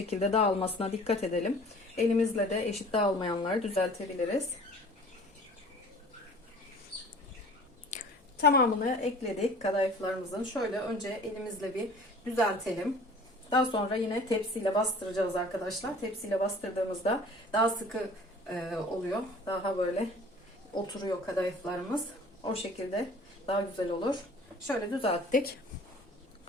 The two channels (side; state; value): both; normal; correlation 0.47